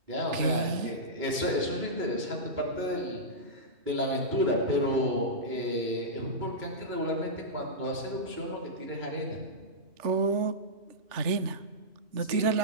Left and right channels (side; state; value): left; late; 3.3 ms